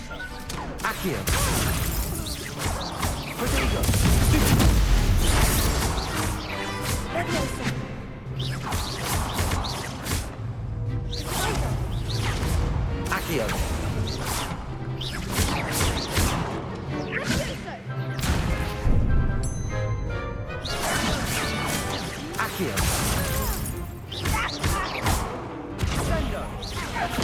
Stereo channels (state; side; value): identical; both; correlation 1.00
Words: Accio. Protego. Stupid. Levioso. Accio. Accio. Sendo.